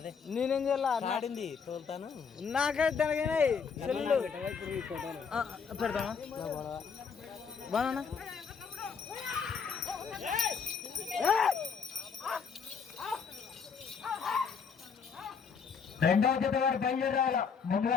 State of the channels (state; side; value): quieter; right; 6.1 dB